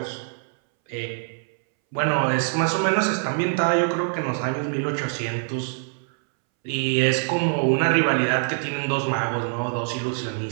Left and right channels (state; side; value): silent; left; 62 dB below the other